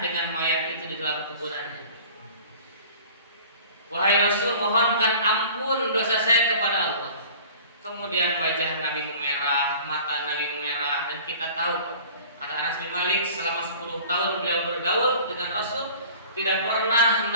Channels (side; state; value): both; inverted; correlation -0.45